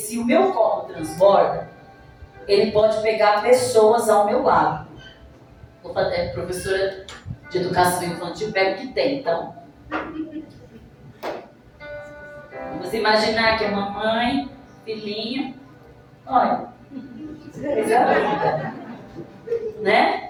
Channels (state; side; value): identical; both; correlation 1.00